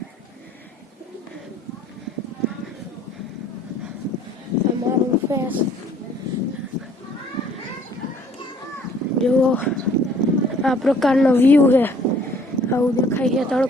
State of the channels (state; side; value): normal; both; correlation 0.58